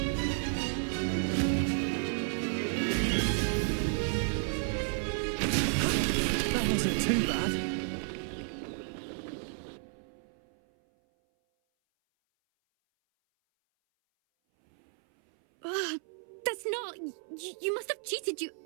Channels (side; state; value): left; silent; 56 dB below the other